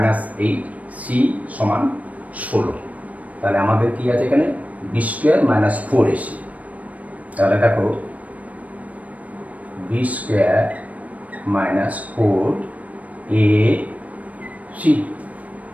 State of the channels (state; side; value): late; left; 0.069 ms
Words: c সমান 16। তাহলে আমাদের কি আছে এখানে? b square minus 4ac। তাহলে দেখো b square minus 4ac।